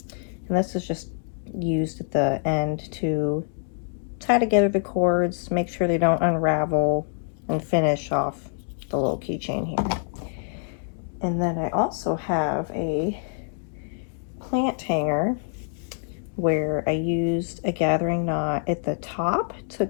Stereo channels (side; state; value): right; silent; digital silence